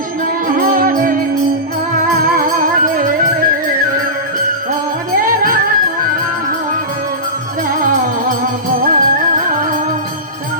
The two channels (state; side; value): normal; both; correlation -0.20